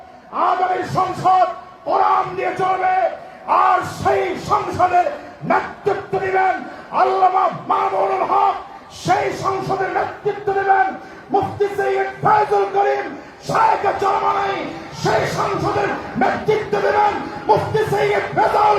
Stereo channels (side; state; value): both; identical; correlation 1.00